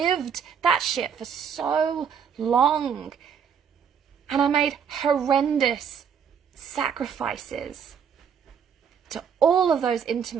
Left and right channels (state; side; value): quieter; left; 7.3 dB